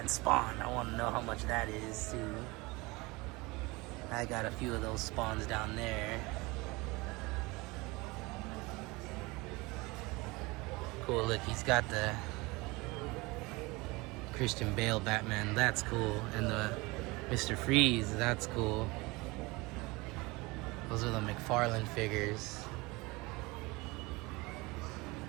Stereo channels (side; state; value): left; quieter; 23.8 dB